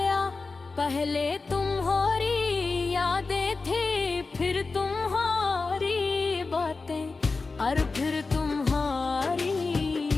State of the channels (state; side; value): quieter; right; 4.0 dB